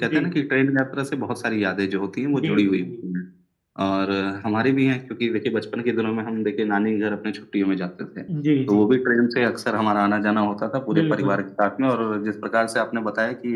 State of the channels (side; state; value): both; identical; correlation 1.00